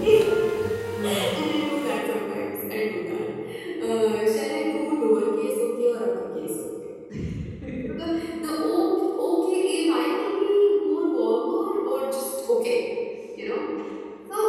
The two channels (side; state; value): both; identical; correlation 1.00